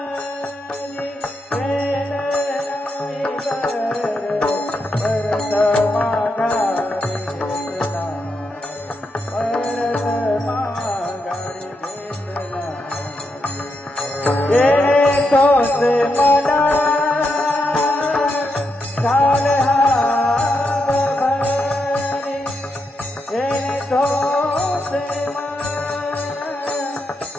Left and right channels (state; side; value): normal; both; correlation 0.83